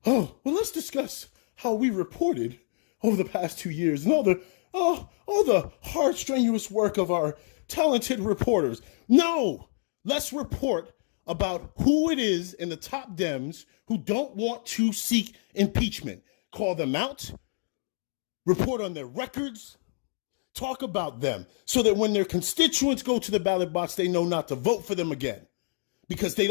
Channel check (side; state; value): right; silent; 60 dB below the other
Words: Oh, well, let's discuss how we reported over the past 2 years and all the hard, strenuous work of our talented reporters. No, let's report about who it is in the top Dems who don't want to seek impeachment. Call them out, report on their records, talk about them so that when their constituents go to the ballot box, they know not to vote for them again because they